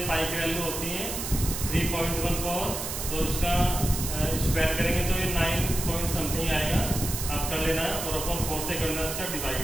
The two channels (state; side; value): noise; right; hiss, 5 dB below the sound